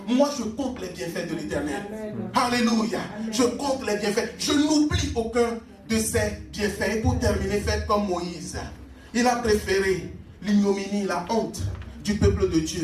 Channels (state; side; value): identical; both; correlation 1.00